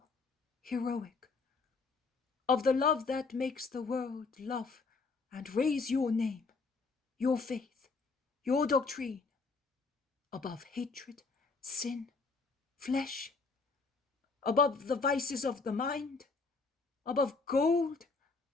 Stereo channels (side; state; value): right; quieter; 4.3 dB